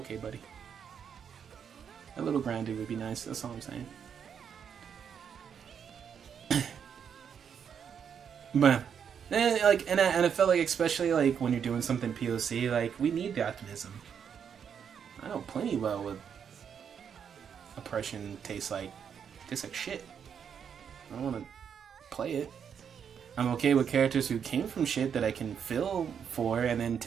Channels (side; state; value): left; quieter; 7.6 dB